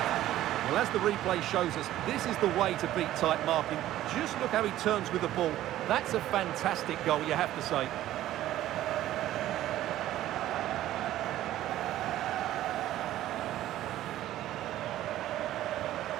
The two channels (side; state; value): left; quieter; 13.8 dB